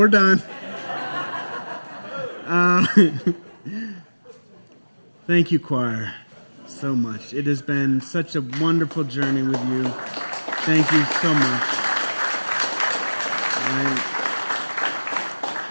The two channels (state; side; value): inverted; both; correlation -1.00